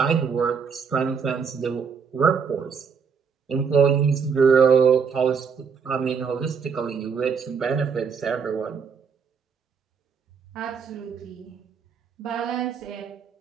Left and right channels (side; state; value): left; quieter; 6.1 dB